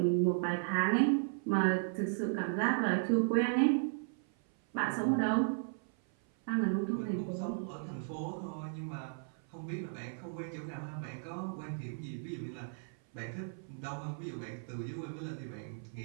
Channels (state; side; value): silent; left; 54 dB below the other